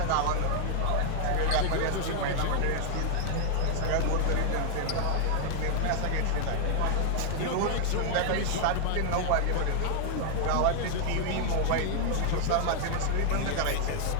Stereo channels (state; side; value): different; both; correlation 0.00